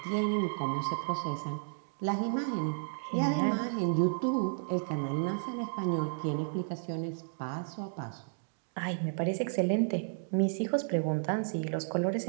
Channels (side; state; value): left; silent; digital silence